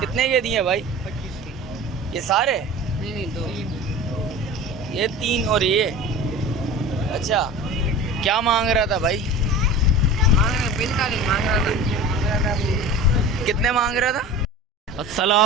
कितने के दिए भाई? 25 की। ये सारे? नहीं 2। ये 3 और ये। अच्छा, क्या मांग रहा था भाई? 45 मांग रहा था। कितने मांग रहा था?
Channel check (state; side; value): normal; both; correlation 0.35